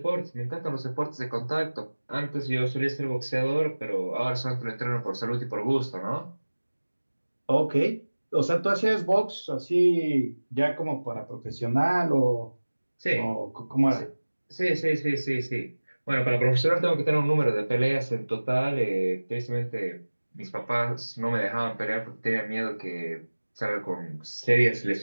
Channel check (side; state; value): both; inverted; correlation -1.00